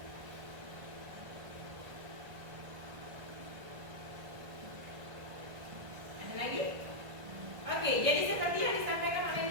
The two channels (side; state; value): left; late; 1.5 ms